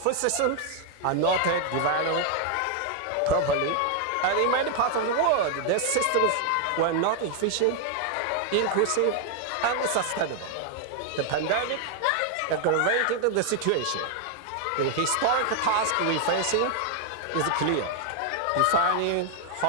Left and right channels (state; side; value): different; both; correlation 0.00